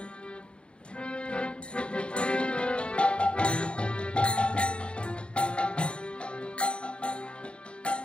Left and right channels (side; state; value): right; late; 0.055 ms